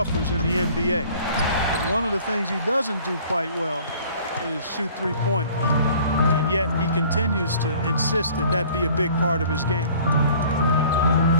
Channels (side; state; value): both; inverted; correlation -0.52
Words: in the NBA. But one of the things he doesn't do quite well is shoot three-pointers. And yet he continues to insist that that be a big part of his game.